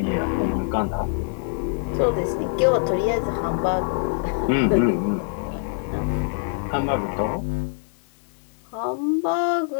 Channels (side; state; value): right; silent; digital silence